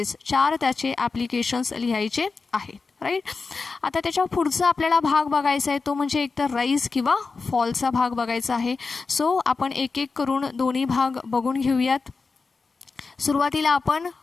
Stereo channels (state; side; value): quieter; right; 4.4 dB